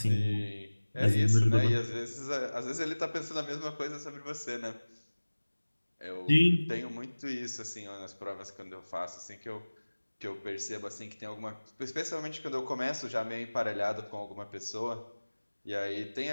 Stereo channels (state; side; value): inverted; both; correlation -1.00